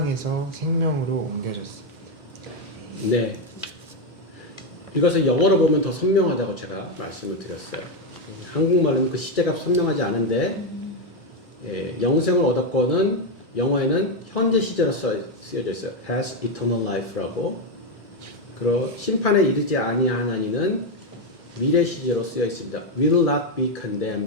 생명으로 옮겨졌습니다. 네. 이것을 영어로 보면 더 선명하다고 제가 말씀을 드렸어요. 한국말로는 그 시제가 선명하지 않은데 영생을 얻었고는 영어에는 현재 시제로 쓰여져 있어요. has eternal life라고. 그리고 심판에 이르지 아니하나니는 미래 시제로 쓰여 있습니다. will not be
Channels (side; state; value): both; normal; correlation 0.06